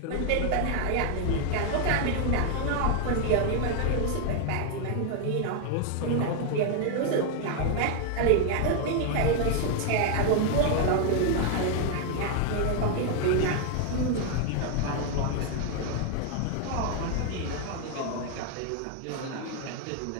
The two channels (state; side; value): different; both; correlation 0.00